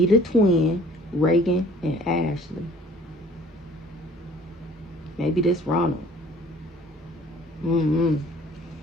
twin, Reagan, and Ashley. Maybe this Ronald. I don't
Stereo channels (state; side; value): normal; both; correlation 0.52